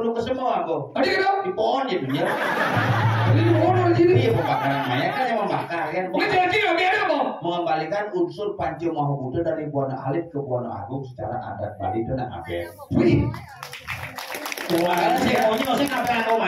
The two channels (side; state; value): both; identical; correlation 1.00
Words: ke semua aku. Ada gitu? Di pohon ya dunia. Jadi di pohon di sini. Iya pembakaran mayat kan yang membakar kan. Ini jadi ngapain apa? Mengembalikan unsur Panci Mahabuddha dari Buana Alit ke Buana Agung secara adat Bali itu nak ngapain? Wih. Karena si maunya nggak usah ngapain aku